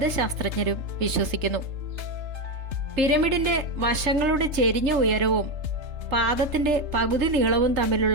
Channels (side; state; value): left; late; 3.3 ms